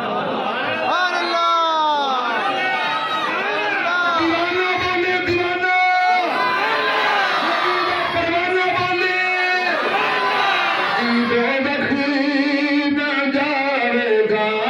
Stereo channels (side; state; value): both; identical; correlation 1.00